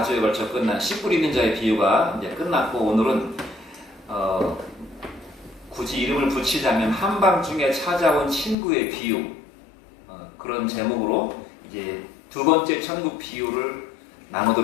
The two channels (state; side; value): drops out; right; at 8.6 s